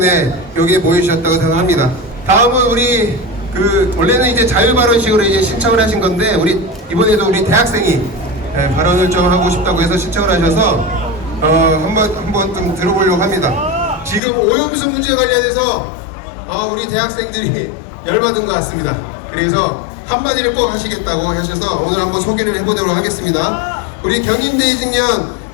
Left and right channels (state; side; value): drops out; right; at 14.2 s